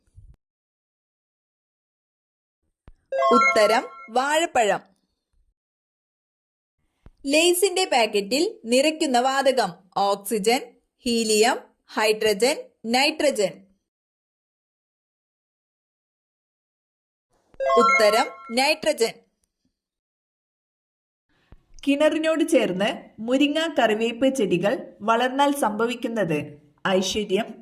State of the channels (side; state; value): both; identical; correlation 1.00